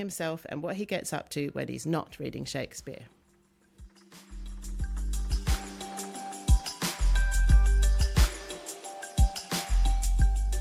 and what he gets up to when he's not reading Shakespeare.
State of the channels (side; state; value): both; identical; correlation 1.00